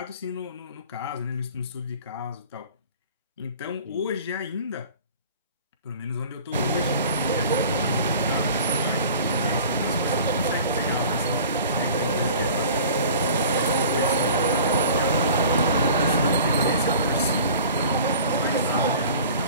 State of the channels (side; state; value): both; inverted; correlation -0.44